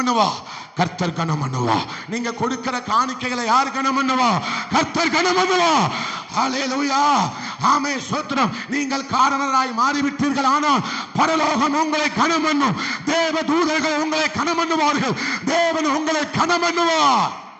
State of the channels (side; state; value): both; identical; correlation 1.00